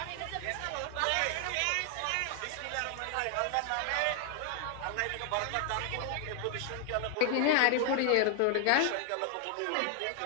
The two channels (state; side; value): different; both; correlation 0.00